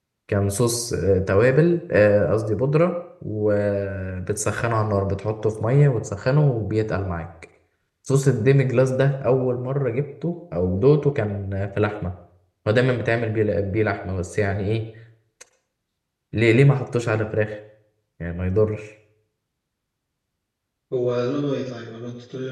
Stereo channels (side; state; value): both; identical; correlation 1.00